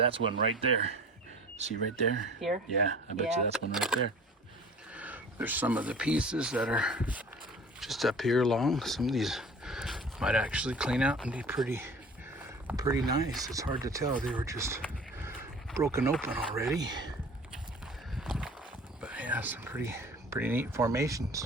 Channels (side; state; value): both; normal; correlation 0.43